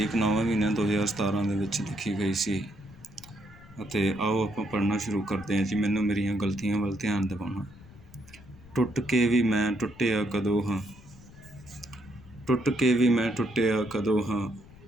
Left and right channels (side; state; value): left; noise; rumble, 22 dB below the sound